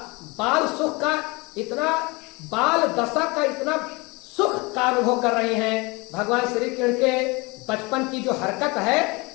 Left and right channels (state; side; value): quieter; right; 25.8 dB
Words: बाल सुख का इतना, बाल दशा का इतना सुख का अनुभव कर रही हैं। भगवान श्री कृष्ण के बचपन की जो हरकत है,